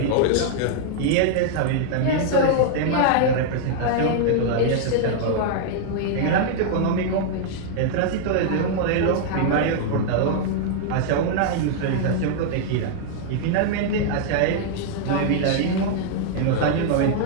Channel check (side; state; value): both; different; correlation -0.01